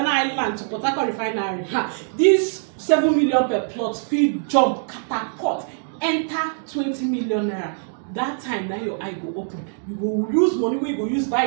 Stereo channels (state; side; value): silent; left; digital silence